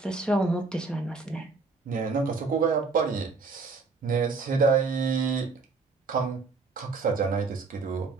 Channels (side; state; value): left; quieter; 4.2 dB